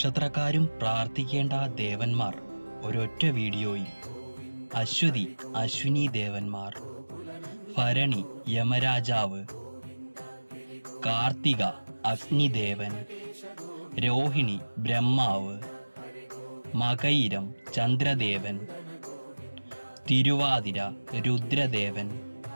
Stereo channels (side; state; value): both; inverted; correlation -1.00